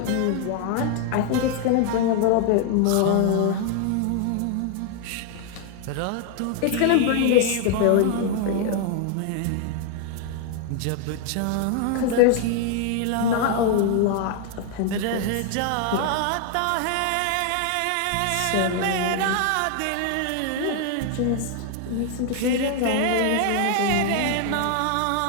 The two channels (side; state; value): both; different; correlation 0.00